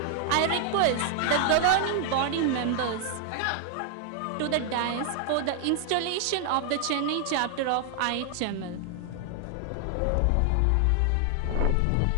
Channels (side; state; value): both; different; correlation 0.00